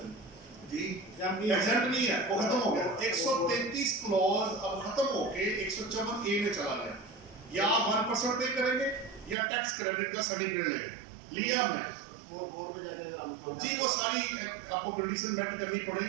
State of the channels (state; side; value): drops out; left; at 9.3 s